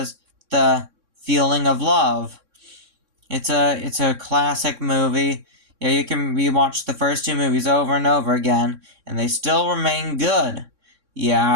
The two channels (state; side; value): late; left; 3.6 ms